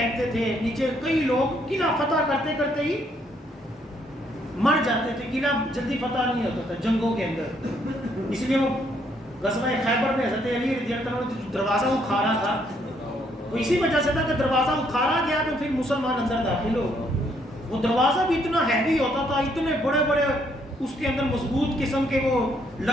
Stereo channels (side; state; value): both; normal; correlation 0.70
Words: تھے نیچے. کئی لوگ قلعہ فتح کرتے کرتے ہی مر جاتے تھے. قلعہ جلدی فتح نہیں ہوتا تھا جنگوں کے اندر. اس لیے وہ غزوہ خیبر میں حضرت علی رضی اللہ عنہ نے دروازہ اکھاڑا تھا، وہ اسی وجہ سے تھا کہ دروازہ اکھاڑا گیا تو پھر مسلمان اندر داخل ہو. وہ دروازہ بھی اتنا ہیوی ہوتا تھا، اتنے بڑے بڑے اس کے اندر مضبوط قسم کے وہ